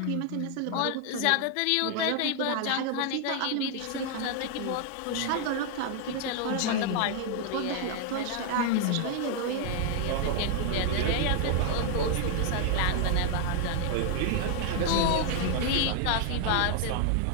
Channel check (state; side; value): different; both; correlation 0.00